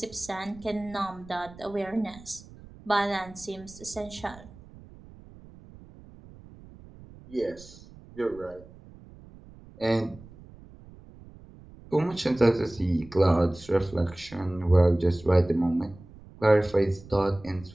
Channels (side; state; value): right; noise; rumble, 20 dB below the sound